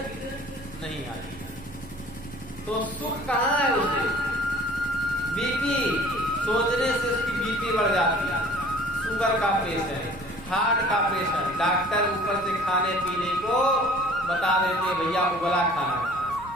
नहीं आती, तो सुख कहाँ है उसे? बीपी सोचने से उसकी बीपी बढ़ जाती है, शुगर का पेशेंट, हार्ट का पेशेंट, डॉक्टर ऊपर से खाने पीने को बता देते भैया उबला खाना,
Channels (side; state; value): right; noise; rumble, 18 dB below the sound